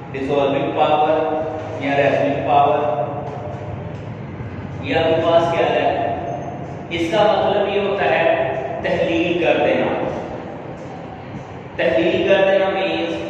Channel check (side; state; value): both; identical; correlation 1.00